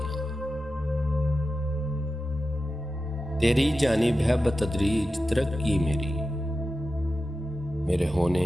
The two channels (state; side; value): normal; both; correlation 0.92